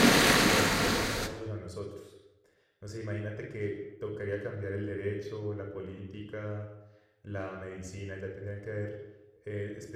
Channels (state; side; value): identical; both; correlation 1.00